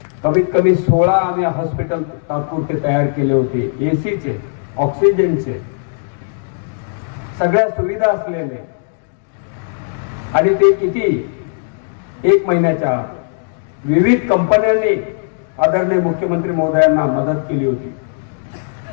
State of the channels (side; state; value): right; silent; digital silence